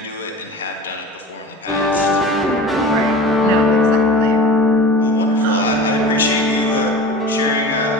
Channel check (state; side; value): normal; both; correlation 0.35